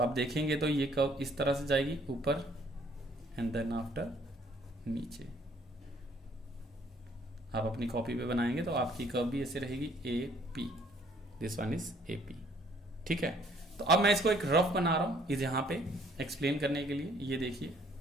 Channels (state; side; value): normal; both; correlation 0.62